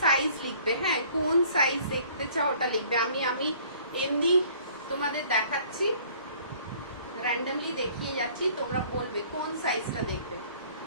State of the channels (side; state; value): both; inverted; correlation -0.55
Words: সাইজ লিখবে, হ্যাঁ, কোন সাইজ দেখতে চাও ওটা লিখবে। আমি এমনি তোমাদের দেখাচ্ছি, র্যান্ডমলি দেখিয়ে যাচ্ছি, তোমরা বলবে কোন সাইজটা দেখবে।